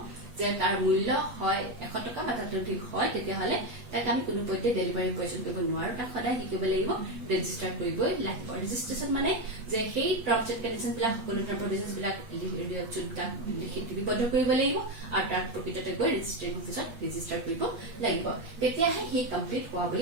যে তাৰ মূল্য হয় 100 টকা বা তাতকৈ অধিক হয় তেতিয়াহলে তাক আমি কোনো পধ্যে ডেলিভাৰী পজিশন কৰিব নোৱাৰো তাক সদায় কি কৰিব লাগিব ৰেজিষ্টাৰ কৰিবই লাগিব ৰেজিষ্ট্ৰেচন মানে যে সেই টাৰ্মছ এণ্ড কণ্ডিচনছ বিলাক সকলো প্ৰভিজনছ বিলাক লিখিতবদ্ধ কৰিব লাগিব আৰু তাৰ প্ৰকৃততে গৈ ৰেজিষ্ট্ৰেচন অফিচত ৰেজিষ্টাৰ কৰিব লাগিব তেতিয়াহে হি কমপ্লিট হোৱা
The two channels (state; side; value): late; left; 8.3 ms